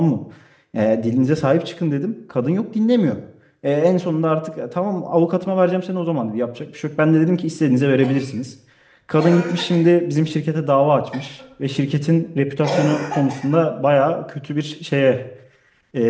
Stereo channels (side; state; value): both; identical; correlation 1.00